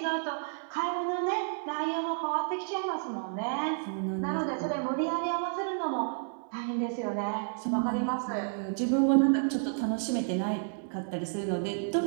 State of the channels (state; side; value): silent; left; 57 dB below the other